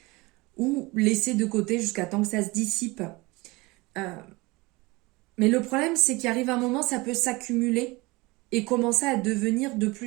ou laisser de côté jusqu'à temps que ça se dissipe. Mais le problème c'est qu'il arrive un moment, ça peut s'accumuler et commencer à devenir de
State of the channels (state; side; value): quieter; left; 23.3 dB